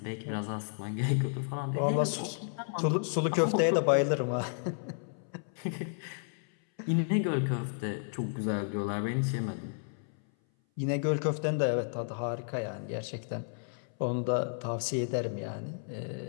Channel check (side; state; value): right; silent; 56 dB below the other